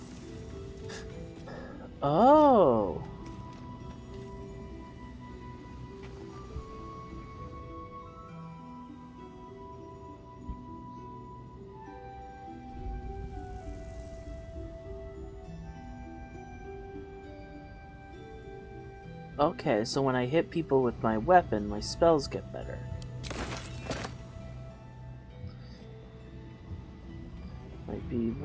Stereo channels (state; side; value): identical; both; correlation 1.00